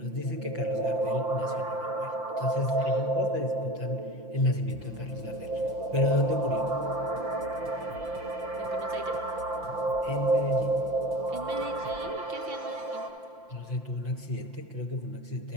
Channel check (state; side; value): late; left; 5.8 ms